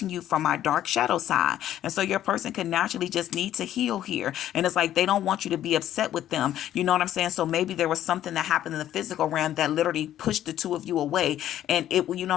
you from my dark shadow side. And so your person can naturally just need to heal here. And it's like they don't want you to be upset with them. You know what I'm saying? So maybe there was something that happened in the physical realm that literally pushed the two of you away, and it, you know what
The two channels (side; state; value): right; quieter; 12.0 dB